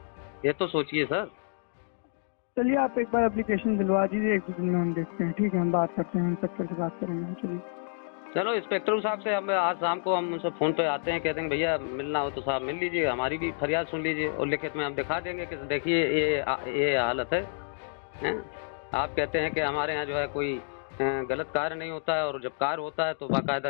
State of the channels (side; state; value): right; silent; digital silence